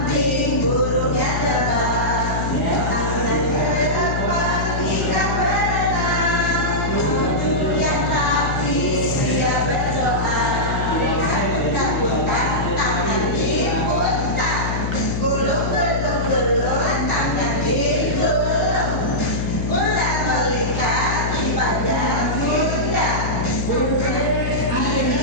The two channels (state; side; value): noise; left; hum, 1 dB below the sound